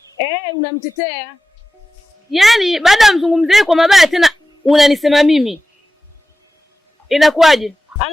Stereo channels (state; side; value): normal; both; correlation 0.93